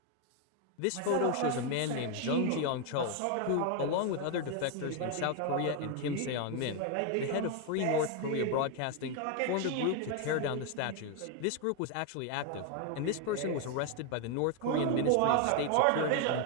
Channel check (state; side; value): different; both; correlation 0.01